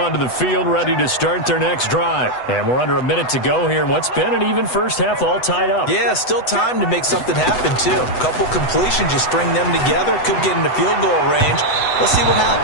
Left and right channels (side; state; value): right; late; 8.0 ms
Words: the field, ready to start their next drive. And we're under a minute to go here in what's been an even first half, all tied up. Yeah, still time to make something happen, too. A couple completions, just string them together. Could get into field goal range. Let's see what